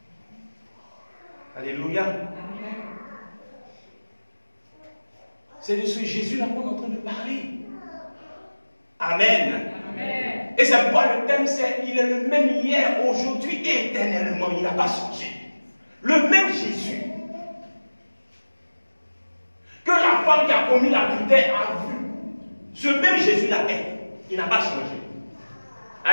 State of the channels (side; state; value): both; inverted; correlation -1.00